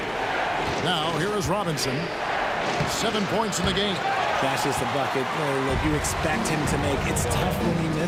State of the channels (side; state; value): both; identical; correlation 1.00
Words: Now, here is Robinson. 7 points in the game. That's just a bucket that you expect him to make. It's tough when you